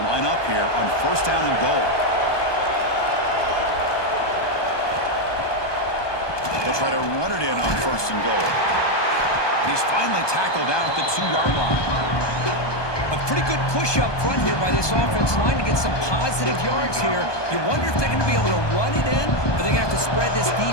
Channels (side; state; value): right; late; 1.2 ms